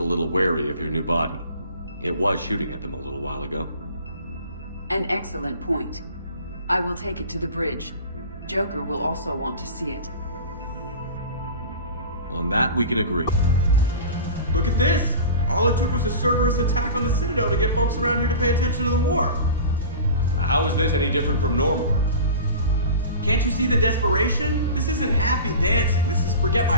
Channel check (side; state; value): both; inverted; correlation -0.36